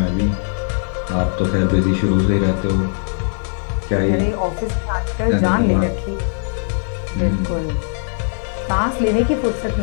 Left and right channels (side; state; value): right; silent; digital silence